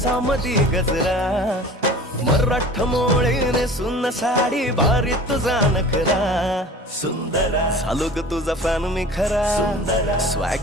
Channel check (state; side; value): normal; both; correlation 0.42